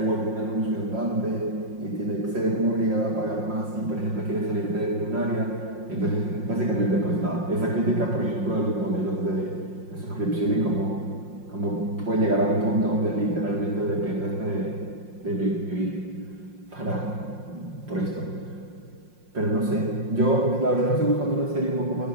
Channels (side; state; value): left; late; 5.6 ms